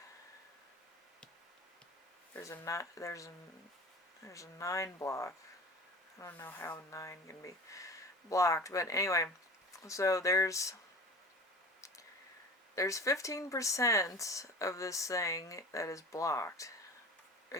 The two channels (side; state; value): both; normal; correlation 0.38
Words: there's a 9 block. I don't know how 9 can be blocked, but anyway, so there's 15% of this thing that is blocked.